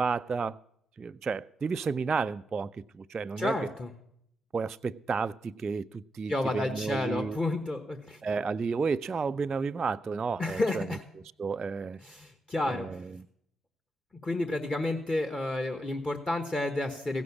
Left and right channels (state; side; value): normal; both; correlation 0.86